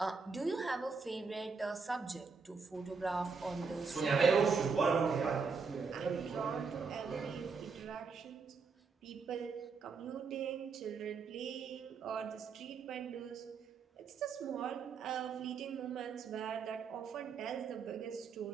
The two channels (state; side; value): quieter; left; 5.1 dB